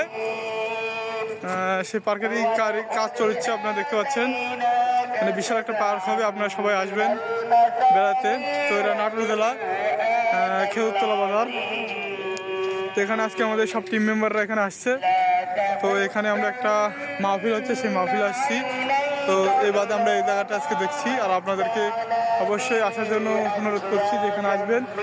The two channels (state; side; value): identical; both; correlation 1.00